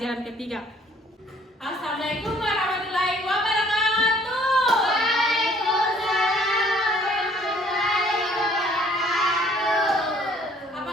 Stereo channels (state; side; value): normal; both; correlation 0.59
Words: ketiga. Assalamualaikum warahmatullahi wabarakatuh.